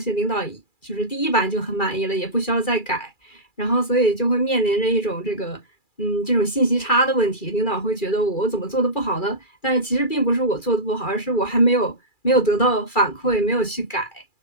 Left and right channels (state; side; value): late; right; 2.3 ms